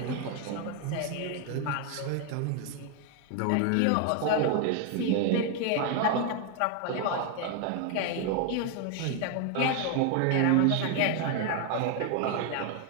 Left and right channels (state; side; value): different; both; correlation 0.01